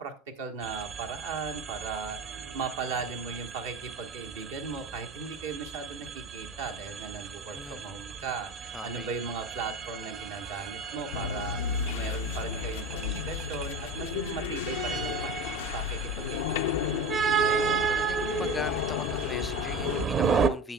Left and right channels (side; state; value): both; normal; correlation 0.28